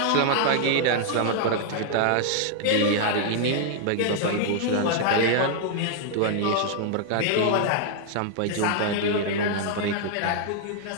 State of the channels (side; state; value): both; different; correlation 0.00